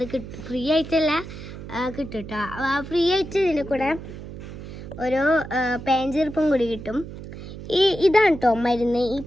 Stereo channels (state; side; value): noise; right; hum, 12 dB below the sound